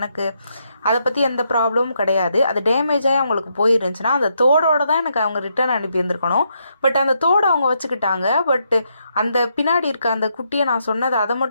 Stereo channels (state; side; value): inverted; both; correlation -0.78